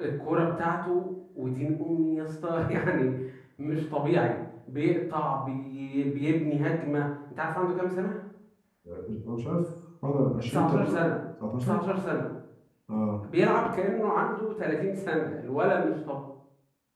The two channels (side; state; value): both; identical; correlation 1.00